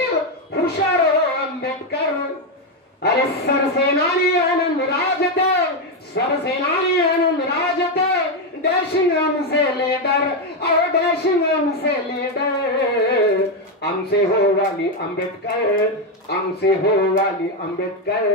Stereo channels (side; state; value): both; normal; correlation 0.06